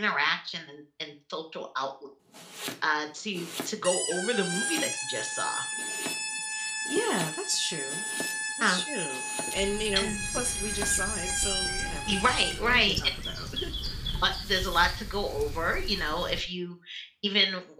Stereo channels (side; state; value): both; identical; correlation 1.00